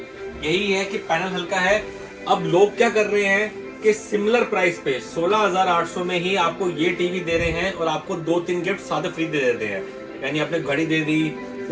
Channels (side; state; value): both; identical; correlation 1.00